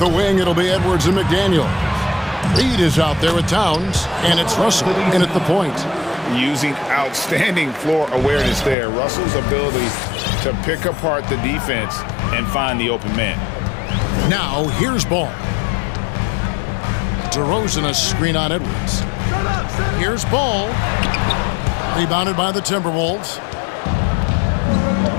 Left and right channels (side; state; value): right; drops out; at 8.8 s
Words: wing, it'll be Edwards and McDaniel. Reed is out there with Towns, and it's Russell in at the point. Using outstanding floor awareness there. Russell's ability to pick apart the defense and find the open man. Now, here's Ball. DeRozan a screen on Edwards. Here's Ball. Rebounded by the Timberwolves.